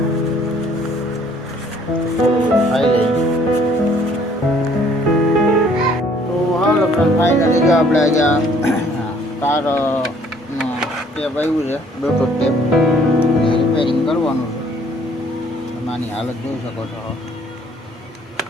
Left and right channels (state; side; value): normal; both; correlation 0.60